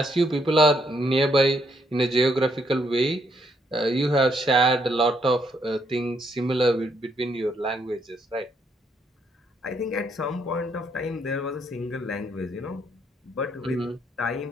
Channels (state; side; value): normal; both; correlation 0.72